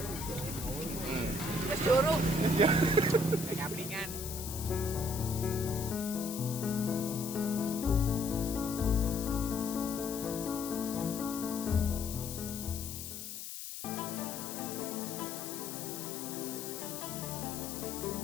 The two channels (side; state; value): left; noise; hiss, 8 dB below the sound